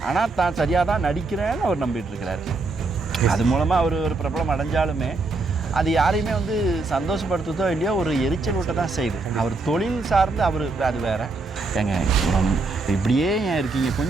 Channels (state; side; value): quieter; left; 3.6 dB